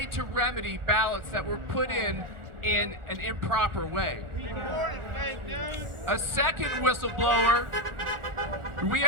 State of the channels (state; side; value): late; left; 1.4 ms